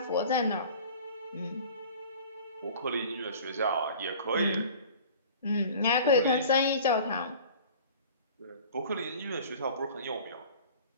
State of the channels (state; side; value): inverted; both; correlation -0.44